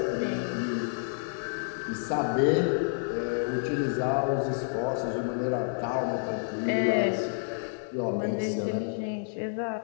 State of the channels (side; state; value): right; silent; digital silence